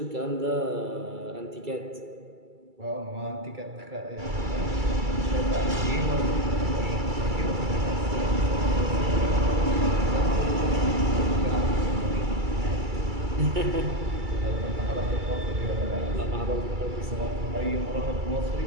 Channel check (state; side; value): late; left; 2.3 ms